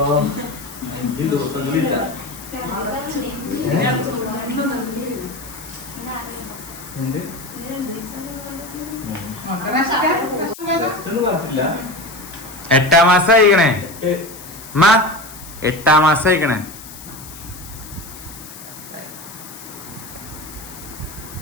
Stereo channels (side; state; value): left; noise; hiss, 15 dB below the sound